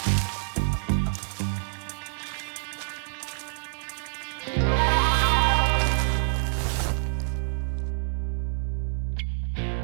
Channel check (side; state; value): left; silent; digital silence